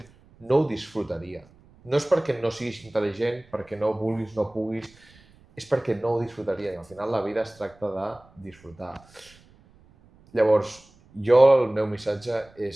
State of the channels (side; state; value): right; noise; rumble, 28 dB below the sound